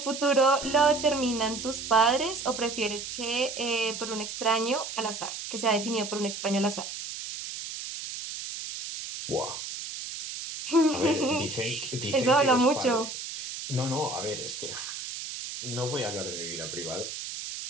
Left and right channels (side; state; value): right; noise; hiss, 8 dB below the sound